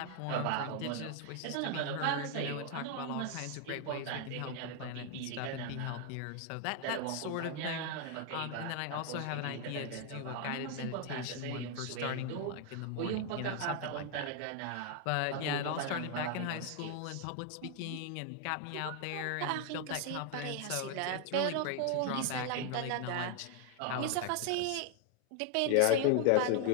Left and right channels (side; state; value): both; different; correlation 0.00